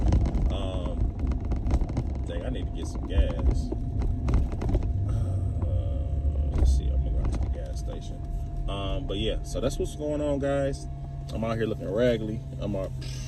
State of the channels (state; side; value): identical; both; correlation 1.00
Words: I need to get some gas. Let's see, I'm gonna go to the gas station. But yeah, so that's what's going on, guys. I'm out here looking raggedy. I'm